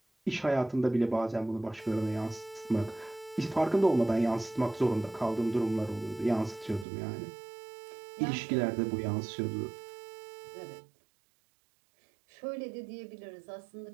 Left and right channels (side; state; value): left; drops out; at 6.9 s